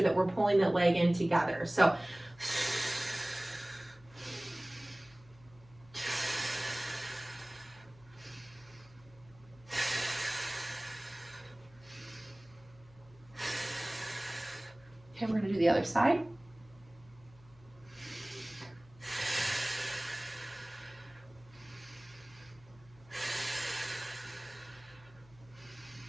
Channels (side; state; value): left; noise; hum, 24 dB below the sound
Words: that we're pulling that leg in together. So other side.